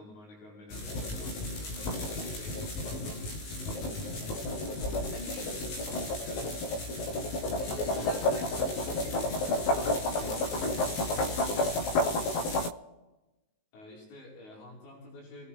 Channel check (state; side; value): late; right; 19 ms